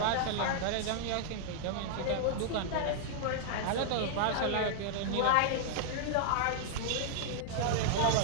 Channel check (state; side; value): different; both; correlation -0.01